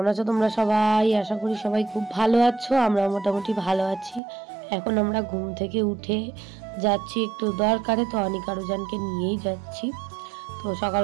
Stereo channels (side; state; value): left; drops out; at 4.2 s